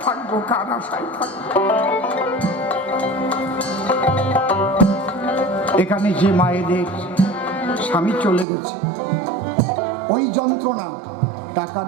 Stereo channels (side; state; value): left; drops out; at 8.5 s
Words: থাকবো, কার আশায় থাকবো? এখানে যে মায়েদের স্বামী চলে গেছে, ওই যন্ত্রণা টাকার